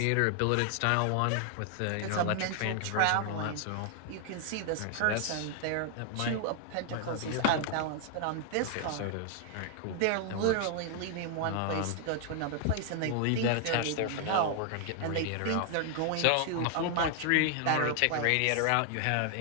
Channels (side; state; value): both; different; correlation 0.00